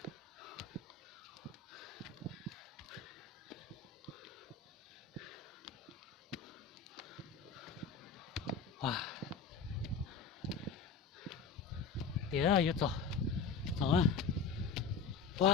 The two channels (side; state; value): right; quieter; 5.8 dB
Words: wow tía ơi rồi rồi